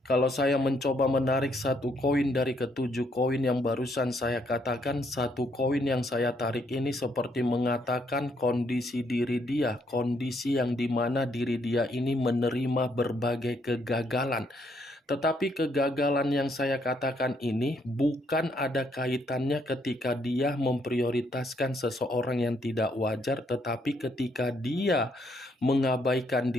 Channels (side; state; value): both; normal; correlation 0.72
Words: Kalau saya mencoba menarik satu koin dari ketujuh koin yang barusan saya katakan, satu koin yang saya tarik ini seperti mengatakan kondisi diri dia, kondisi yang dimana diri dia ini menerima berbagai kegagalan. Tetapi kegagalan yang saya katakan ini bukan ada kaitannya ketika dia memprioritaskan seseorang yang tidak wajar, tetapi ketika dia mengabaikan